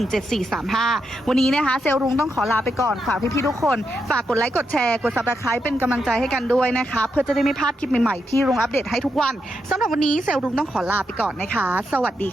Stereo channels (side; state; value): both; normal; correlation 0.83